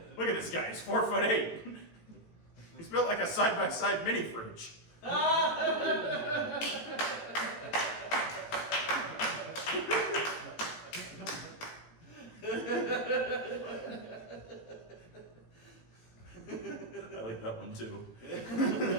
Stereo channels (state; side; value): late; right; 18 ms